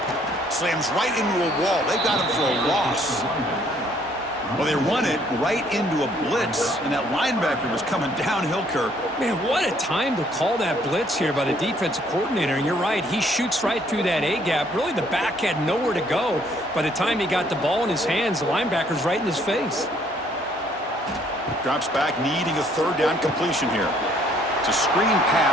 Slams right into a wall. They got him for a loss. Well, they run it right into a blitz, and that linebacker was coming downhill, Kirk. Man, what a time to call that blitz here by the defensive coordinator. And you're right, he shoots right through that A-gap. Really, the back had nowhere to go. By the time he got the ball in his hands, the linebacker's right in his face. Drops back, needing a 3rd down completion here. It's a screen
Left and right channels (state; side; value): normal; both; correlation 0.64